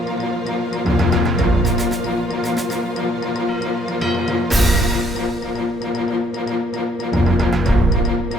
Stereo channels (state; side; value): normal; both; correlation 0.66